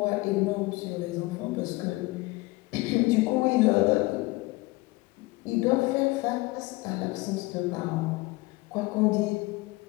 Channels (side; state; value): right; quieter; 22.5 dB